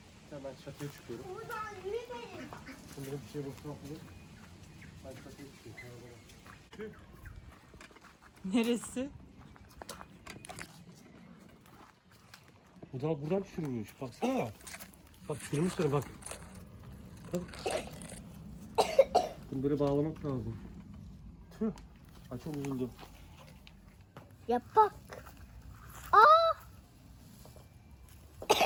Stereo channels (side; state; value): both; identical; correlation 1.00